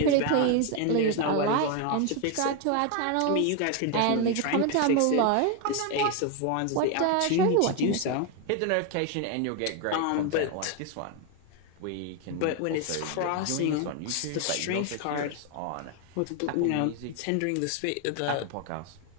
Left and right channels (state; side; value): different; both; correlation 0.01